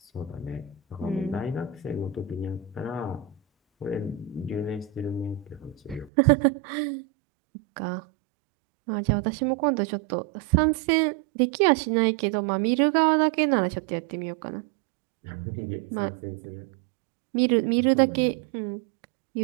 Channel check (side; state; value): left; drops out; at 6.1 s